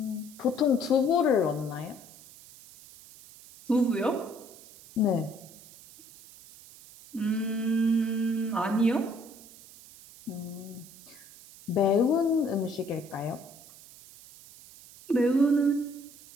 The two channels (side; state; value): right; noise; hiss, 20 dB below the sound